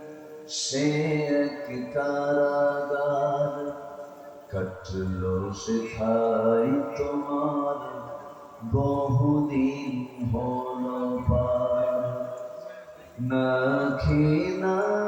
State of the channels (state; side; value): identical; both; correlation 1.00